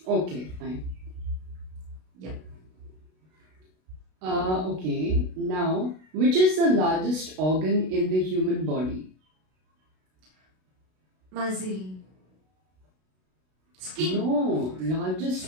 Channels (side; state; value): left; late; 32 ms